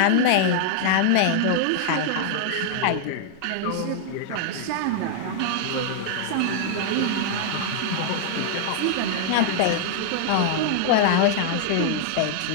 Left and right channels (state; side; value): different; both; correlation 0.00